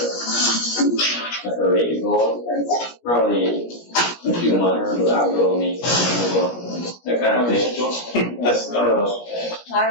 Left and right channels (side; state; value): right; late; 17 ms